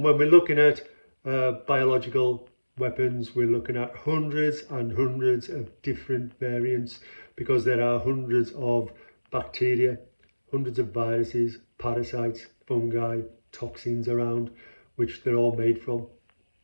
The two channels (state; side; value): inverted; both; correlation -1.00